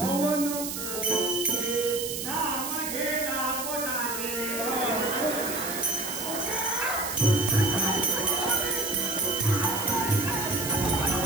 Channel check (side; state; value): right; noise; hiss, 5 dB below the sound